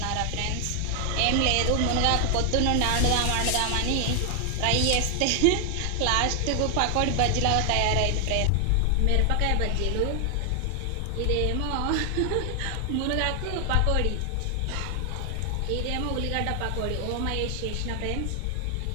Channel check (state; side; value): different; both; correlation 0.00